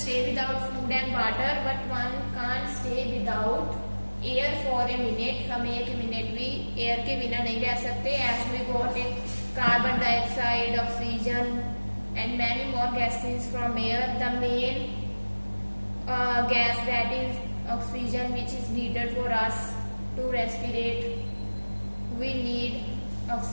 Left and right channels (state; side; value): inverted; both; correlation -1.00